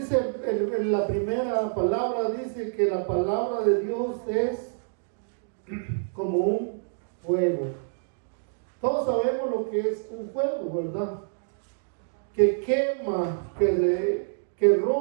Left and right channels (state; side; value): silent; left; digital silence